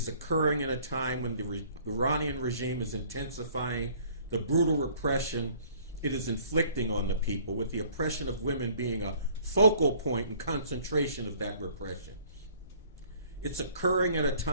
occurring in a time when the Iranian regime is intensifying the brutal repression it is inflicting on the people, with the oppression of women being a focal point and concentration of that repression. It's occurring at a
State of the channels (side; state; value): both; inverted; correlation -0.55